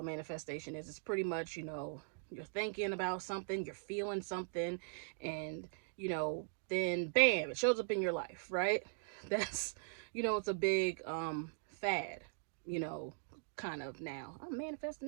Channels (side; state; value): left; silent; digital silence